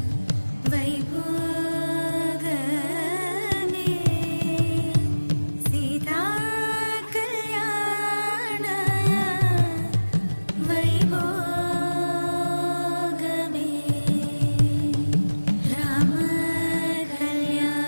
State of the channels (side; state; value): both; inverted; correlation -1.00